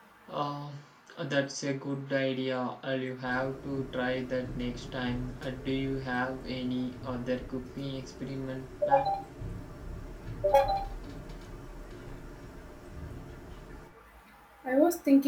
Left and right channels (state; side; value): identical; both; correlation 1.00